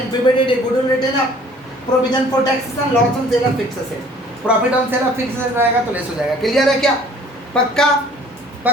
PBDT, goodwill written off, provision for taxes and loss on sale of fix asset. Profit on sale of fix asset रहेगा तो लेस हो जाएगा। क्लियर है क्या? पक्का?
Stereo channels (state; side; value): normal; both; correlation 0.53